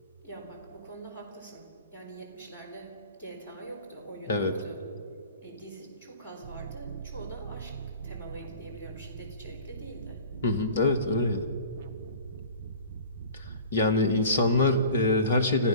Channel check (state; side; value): inverted; both; correlation -0.41